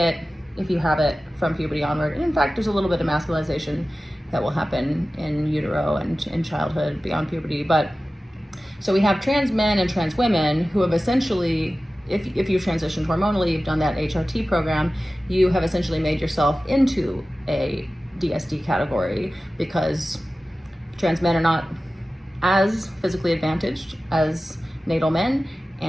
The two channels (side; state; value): both; normal; correlation 0.96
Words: if you have it from puberty onward. And in fact, there's a little bit of masculinization that will happen in utero and in childhood beyond puberty. But so we have trans men and trans women who have essentially, if you transitioned hormonally, you've done that HRT program, you have essentially made yourself into a DSD category, because trans men are not as physically advantaged as natal men,